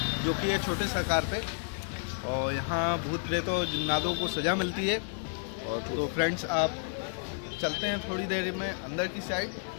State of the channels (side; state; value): right; silent; digital silence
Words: जो कि है छोटे सा कार पे। और यहाँ भूत प्रेत और जिन्नातों को सज़ा मिलती है। और तो फ्रेंड्स, आप चलते हैं थोड़ी देर में अंदर की साइड।